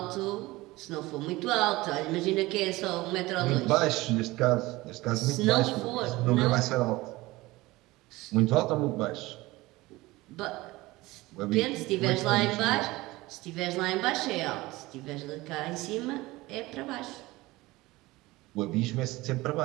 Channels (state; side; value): quieter; left; 19.9 dB